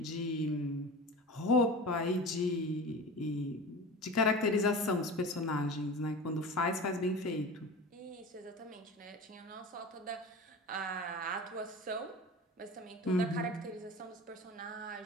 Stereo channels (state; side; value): normal; both; correlation 0.34